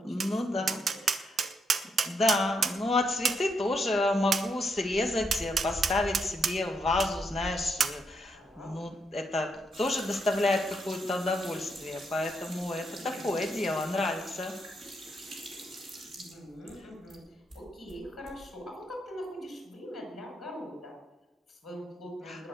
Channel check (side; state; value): both; normal; correlation 0.78